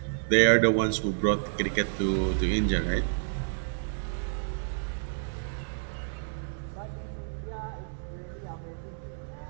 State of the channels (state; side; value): silent; left; 58 dB below the other